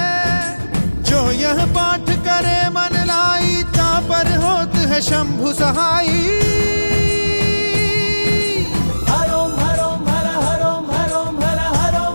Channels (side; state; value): both; inverted; correlation -1.00